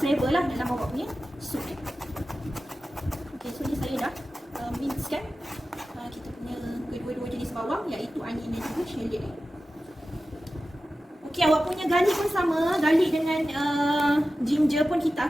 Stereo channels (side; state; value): both; normal; correlation 0.94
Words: flavor lah dalam awak punya soup. Okay, so ni saya dah mincekan kita punya kedua-dua jenis bawang, iaitu onion dan juga shallot Okay, awak punya garlic pun sama. Garlic dengan ginger pun